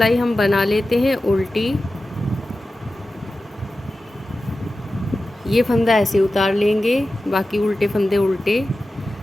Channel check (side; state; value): both; normal; correlation 0.94